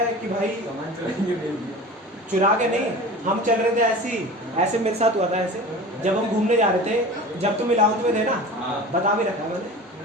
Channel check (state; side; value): normal; both; correlation 0.36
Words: कि भाई चुरा के नहीं, हम चल रहे थे ऐसे मेरे साथ हुआ था ऐसे, जब हम घूमने जा रहे थे, जब तुम 11th में थे ना, बता भी रखा है मैंने,